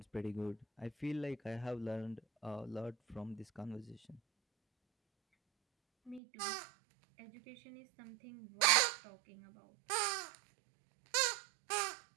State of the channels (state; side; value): drops out; left; at 6.2 s